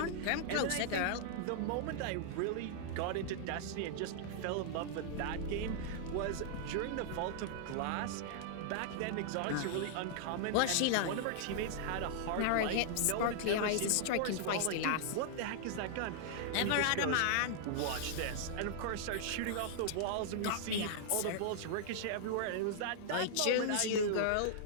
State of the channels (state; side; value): different; both; correlation -0.01